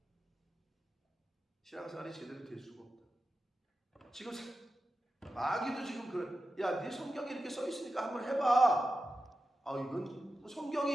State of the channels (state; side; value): normal; both; correlation 0.92